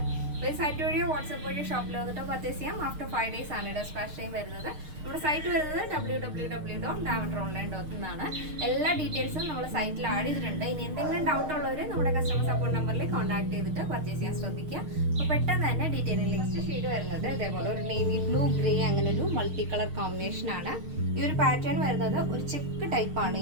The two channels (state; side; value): late; left; 6.5 ms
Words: അപ്പോൾ ഈ സൈറ്റ് വഴിയോ വാട്സ്ആപ്പ് വഴിയോ ഷോപ്പിൽ വന്നിട്ട് പർച്ചേസ് ചെയ്യാം. ആഫ്റ്റർ 5 days ആണ് ഡെസ്പാച്ച് ടൈം വരുന്നത്. നമ്മുടെ സൈറ്റ് വരുന്നത് www.lavenderonline.in എന്നാണ്. എല്ലാ ഡീറ്റെയിൽസും നമ്മൾ സൈറ്റിൽ ആഡ് ചെയ്തിട്ടുണ്ട്. ഇനി എന്തെങ്കിലും ഡൗട്ട് ഉള്ളവർ നമ്മുടെ കസ്റ്റമർ സപ്പോർട്ട് നമ്പറിൽ കോൺടാക്ട് ചെയ്തിട്ട് പർച്ചേസ് ചെയ്യാൻ ശ്രദ്ധിക്കുക. അപ്പോൾ പെട്ടെന്ന് തന്നെ ഡീറ്റെയിലിംഗ് നെക്സ്റ്റ് ഷെയ്ഡ് വരുന്നത് ഇതേപോലെ ഒരു നേവി ബ്ലൂ ഗ്രേ അങ്ങനെ ഒരു മൾട്ടി കളർ കോമ്പിനേഷൻ ആണ്. ഈ ഒരു പാറ്റേൺ വരുന്നത് ഒരു ചെക്ക് ടൈപ്പാണ്.